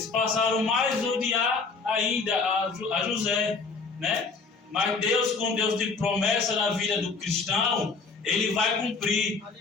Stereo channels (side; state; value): right; quieter; 4.5 dB